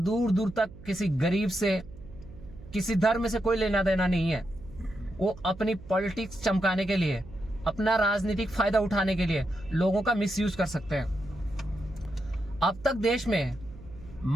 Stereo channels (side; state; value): right; noise; hum, 17 dB below the sound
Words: दूर तक किसी गरीब से, किसी धर्म से कोई लेना देना नहीं है, वो अपनी पॉलिटिक्स चमकाने के लिए, अपना राजनीतिक फायदा उठाने के लिए लोगों का मिसयूज कर सकते हैं। अब तक देश में